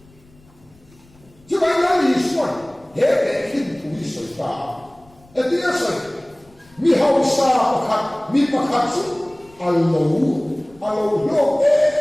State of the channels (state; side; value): noise; left; rumble, 28 dB below the sound